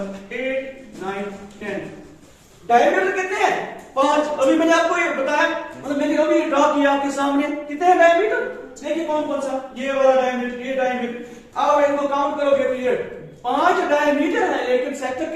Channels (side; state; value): both; identical; correlation 1.00